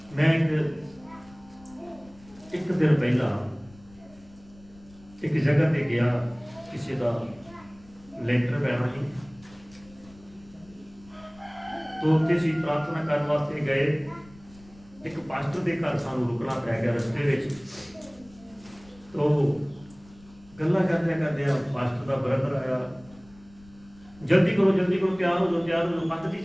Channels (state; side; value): noise; left; rumble, 25 dB below the sound